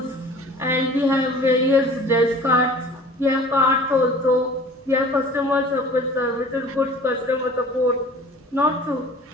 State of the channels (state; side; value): normal; both; correlation 0.45